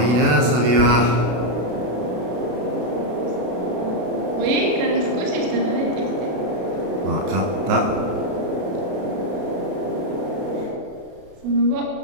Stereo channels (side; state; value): left; late; 32 ms